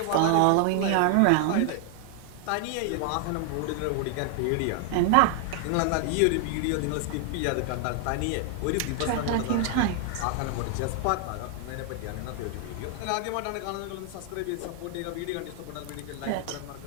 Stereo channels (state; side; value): different; both; correlation 0.00